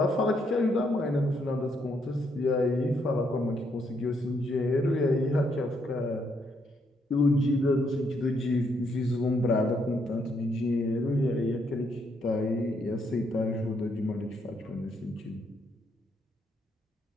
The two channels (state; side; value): normal; both; correlation 0.74